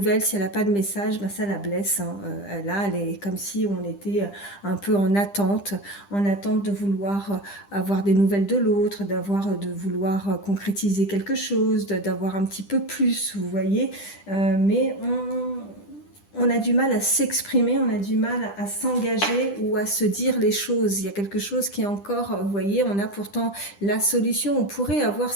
si elle n'a pas de message, ben ça la blesse. Hein. Là, elle est comme si on était un peu en attente de vouloir avoir des nouvelles de l'autre, de vouloir concrétiser quelque chose, d'avoir un petit peu plus, vous voyez. Mais on a du mal à s'exprimer, on a du mal à s'engager ou à se dire les choses. Il y a quelque chose qui est encore, vous voyez, on a pourtant la solution. On pourrait avoir,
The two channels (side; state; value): right; late; 10 ms